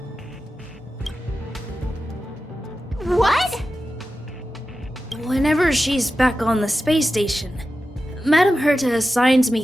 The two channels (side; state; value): both; normal; correlation 0.92